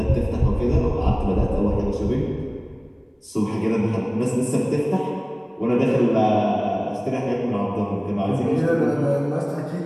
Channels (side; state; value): both; identical; correlation 1.00